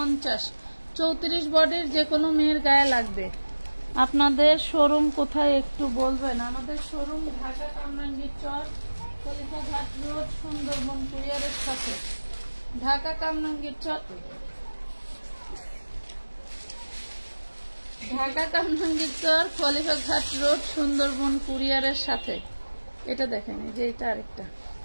34 বডির যে কোনো মেয়ের গায়ে লাগবে। আপনাদের শোরুম কোথায় একটু বলবেন? আমাদের শোরুম ঢাকা কামরাঙ্গীর চর, খলিফাঘাট রোড, সুন্দরবন কুরিয়ারের সাথে। ঢাকা কামরাঙ্গীর চর, ঢাকা কামরাঙ্গীর চর, খলিফাঘাট রোড, সুন্দরবন কুরিয়ারের সাথে। এটা দেখেন, এই যে এটা আরেকটা।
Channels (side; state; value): both; inverted; correlation -1.00